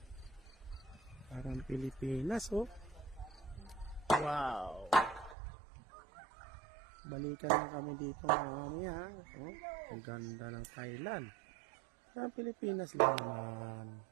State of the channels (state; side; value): drops out; left; at 5.4 s